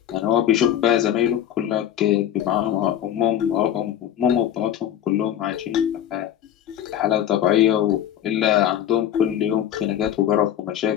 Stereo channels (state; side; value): quieter; right; 10.8 dB